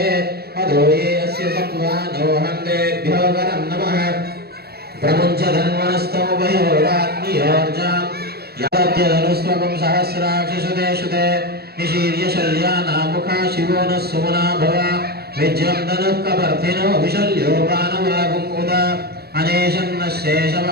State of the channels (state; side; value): late; left; 0.46 ms